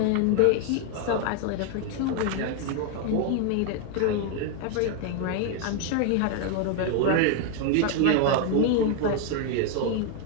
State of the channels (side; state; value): both; different; correlation 0.00